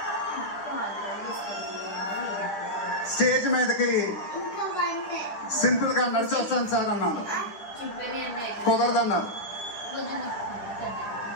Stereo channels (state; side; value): late; right; 10 ms